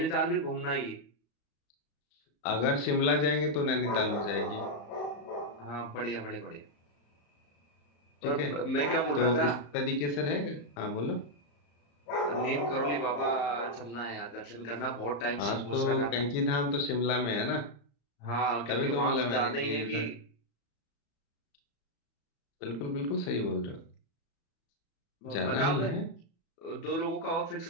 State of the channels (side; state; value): right; late; 34 ms